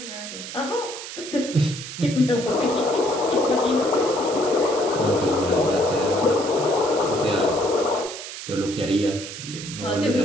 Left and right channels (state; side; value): noise; right; hiss, 10 dB below the sound